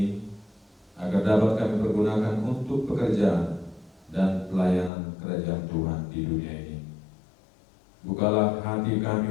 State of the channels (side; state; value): right; drops out; at 4.9 s